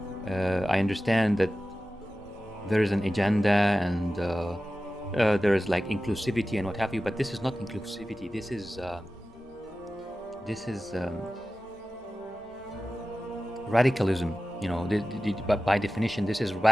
I understand that there is an agenda and there is like inclusivity and what have you, but this is not inclusivity. This is radicalism. But by definition, this is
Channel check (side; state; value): both; normal; correlation 0.95